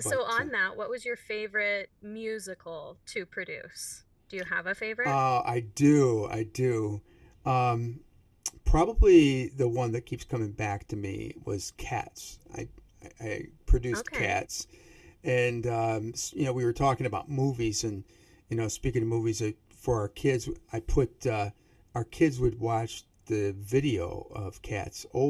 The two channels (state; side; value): identical; both; correlation 1.00